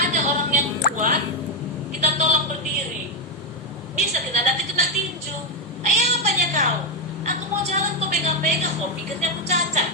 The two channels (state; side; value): normal; both; correlation 0.05